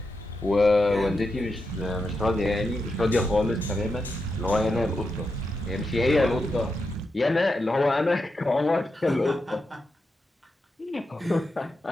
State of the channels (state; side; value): normal; both; correlation 0.87